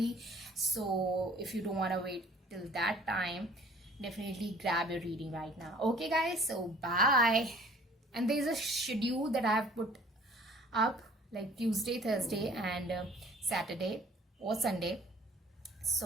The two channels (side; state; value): both; normal; correlation 0.52